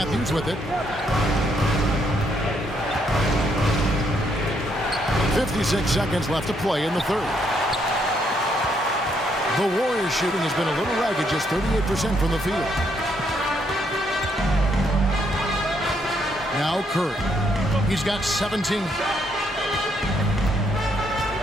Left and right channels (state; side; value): normal; both; correlation 0.73